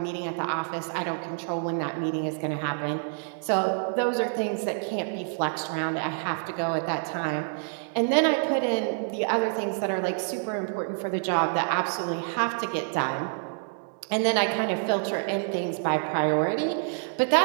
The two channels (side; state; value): left; silent; digital silence